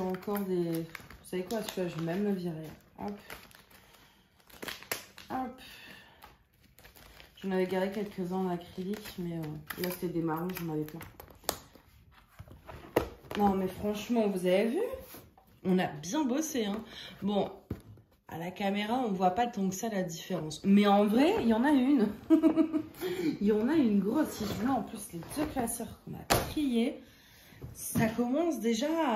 y a encore des... Vous savez quoi, celui-là, je vais même le virer. Hop. Hop. J'en avais garé quelques-uns en acrylique, mais là, c'était des marrons, j'en avais plein. Non, mais franchement, vous avez vu? On a bien bossé, hein. Bon, à la caméra, on voit pas tant que ça la différence. Mais en vrai, il y en a une. Il y en a une grosse. Si je veux, en plus, les deux classeurs qu'on a triés, ça commence déjà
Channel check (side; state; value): both; identical; correlation 1.00